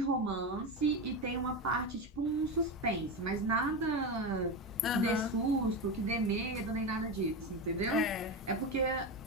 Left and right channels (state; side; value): normal; both; correlation 0.17